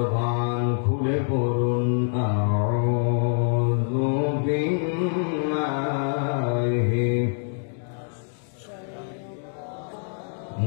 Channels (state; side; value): silent; right; digital silence